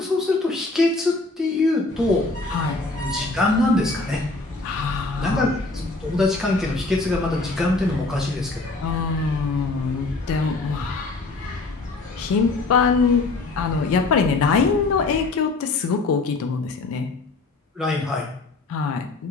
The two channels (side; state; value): right; quieter; 3.4 dB